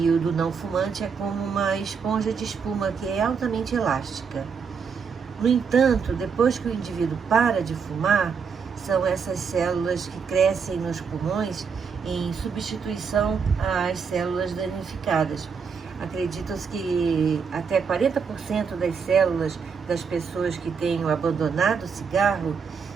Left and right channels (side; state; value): left; quieter; 6.0 dB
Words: o do não fumante é como uma esponja de espuma que é altamente elástica. No entanto, depois que o indivíduo para de fumar, são essas células que crescem nos pulmões em substituição às células danificadas. Acredita-se que até 40% das células das pessoas que tenham abandonado o cigarro